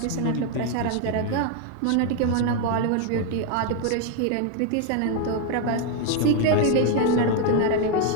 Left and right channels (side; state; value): both; different; correlation 0.01